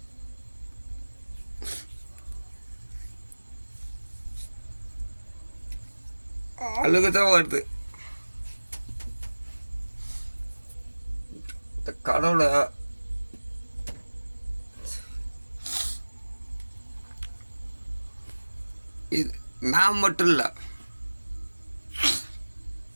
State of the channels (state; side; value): inverted; both; correlation -1.00